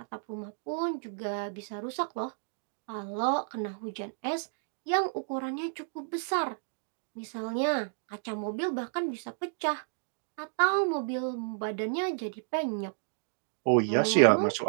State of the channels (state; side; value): silent; left; digital silence